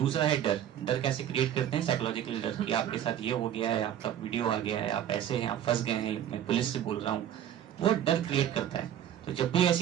है डर। डर कैसे क्रिएट करते हैं? साइकोलॉजिकली डर कि आपके साथ ये हो गया है, आपका वीडियो आ गया है, आप ऐसे हैं, आप फंस गए हैं, मैं पुलिस से बोल रहा हूँ, वो डर क्रिएट करता है। तो जब भी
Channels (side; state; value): left; quieter; 10.6 dB